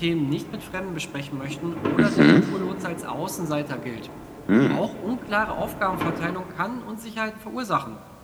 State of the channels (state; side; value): identical; both; correlation 1.00